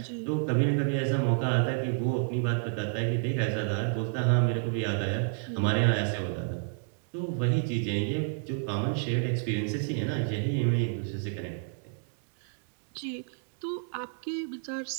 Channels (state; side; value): silent; left; digital silence